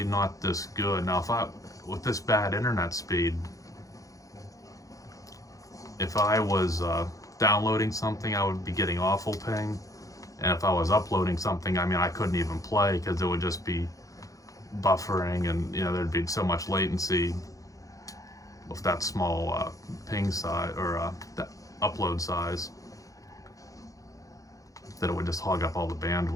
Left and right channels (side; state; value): right; late; 0.16 ms